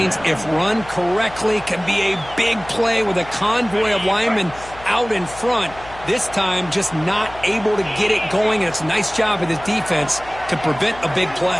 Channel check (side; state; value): left; noise; hum, 18 dB below the sound